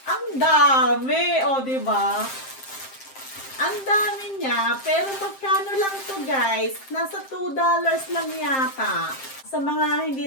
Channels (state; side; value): late; right; 7.6 ms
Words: Ang dami! O, diba? Ang dami niya. Pero magkano lang to guys? Nasa $2 lang yata. Sa mga hindi